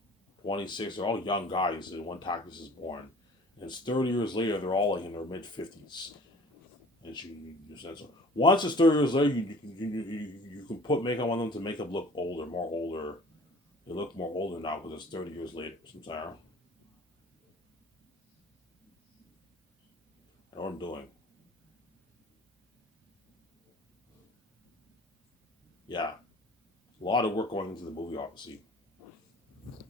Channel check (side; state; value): both; normal; correlation 0.48